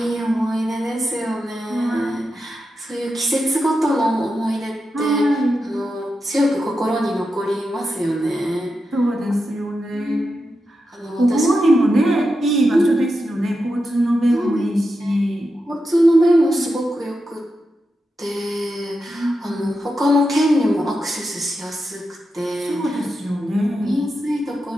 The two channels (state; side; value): normal; both; correlation 0.88